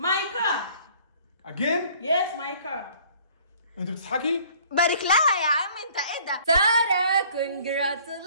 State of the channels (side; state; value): both; inverted; correlation -0.55